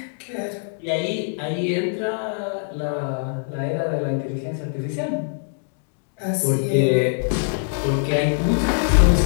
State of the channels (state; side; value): silent; right; digital silence